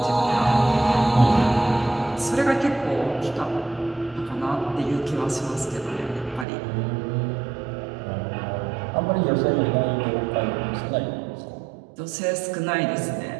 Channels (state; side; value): drops out; left; at 6.5 s